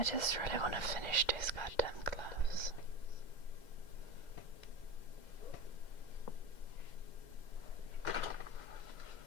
just really want to finish these goddamn gloves.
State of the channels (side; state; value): right; late; 2.1 ms